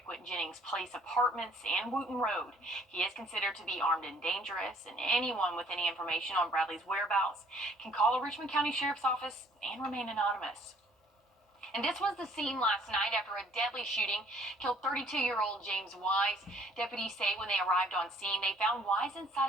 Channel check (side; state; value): both; normal; correlation 0.59